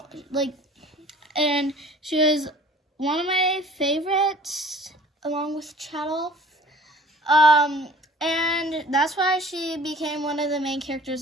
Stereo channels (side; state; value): both; normal; correlation 0.48